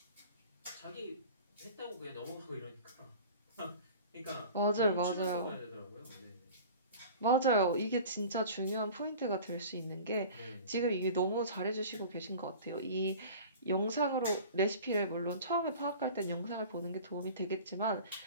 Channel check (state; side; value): inverted; both; correlation -0.40